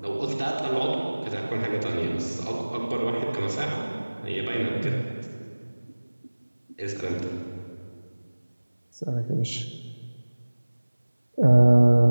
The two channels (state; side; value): inverted; both; correlation -1.00